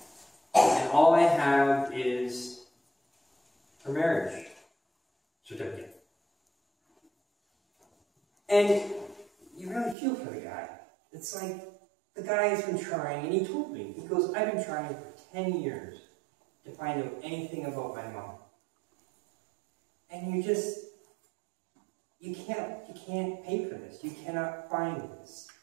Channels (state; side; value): drops out; left; at 10.0 s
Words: And all I have is her marriage certificate." And you really feel for the guy. It's like, the guy has been trying, and he told me, he goes, "I've been trying for 10 years to find out anything about my mom." And you can't pay for this. You cannot find this.